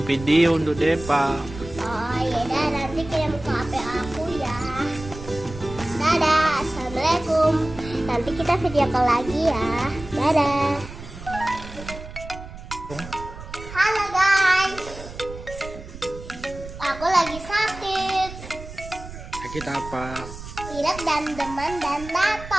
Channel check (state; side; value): noise; right; rumble, 13 dB below the sound